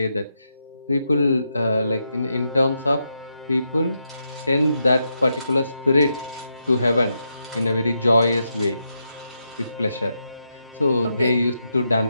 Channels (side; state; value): both; inverted; correlation -0.83